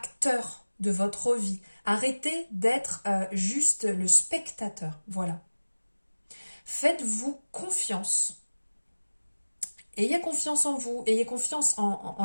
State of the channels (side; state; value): both; inverted; correlation -1.00